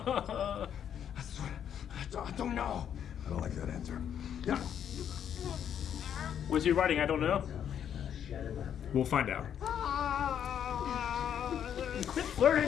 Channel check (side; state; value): right; quieter; 9.1 dB